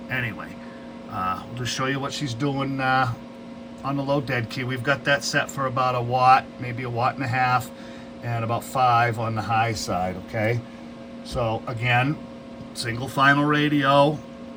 anyway, we'll just show you what she's doing on the low dead key. We've got that set for about a watt, maybe 1.5 watts, and about 5 on the high side. Okay, so again, single final radio.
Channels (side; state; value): both; identical; correlation 1.00